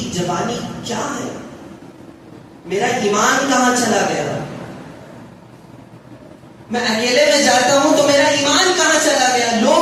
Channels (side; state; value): both; identical; correlation 1.00